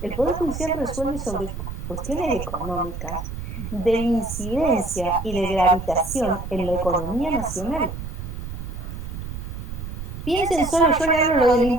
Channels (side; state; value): right; noise; rumble, 7 dB below the sound